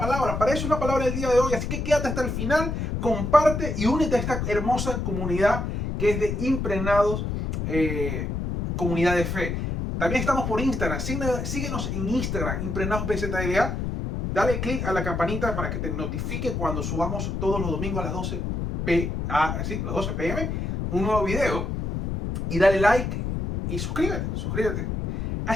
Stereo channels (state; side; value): noise; left; rumble, 2 dB below the sound